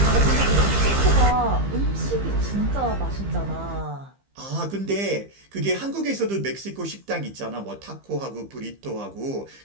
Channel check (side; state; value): left; late; 15 ms